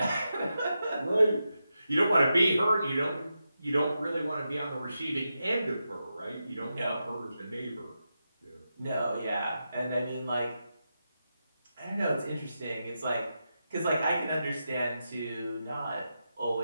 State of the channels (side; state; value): both; inverted; correlation -0.88